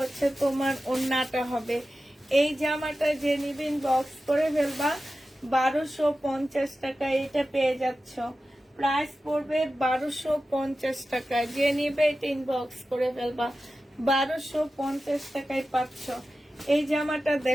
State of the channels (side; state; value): both; normal; correlation 0.93